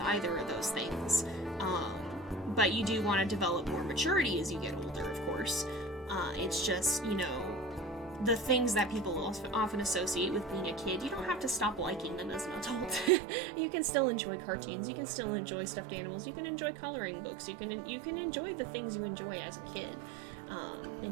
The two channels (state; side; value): drops out; left; at 13.1 s